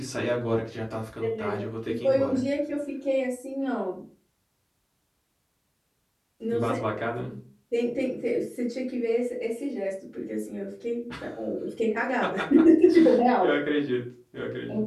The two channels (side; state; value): both; identical; correlation 1.00